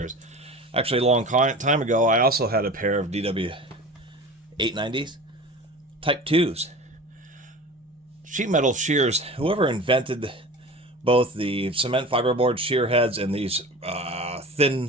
Actually, a long time ago, I also had a pair of DW890s, Type 2s. Sheet metal shears, whoever invented both the cement fiberboard shear heads and these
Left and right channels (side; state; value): both; normal; correlation 0.35